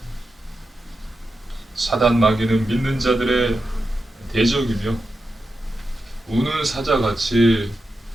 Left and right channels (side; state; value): both; normal; correlation 0.89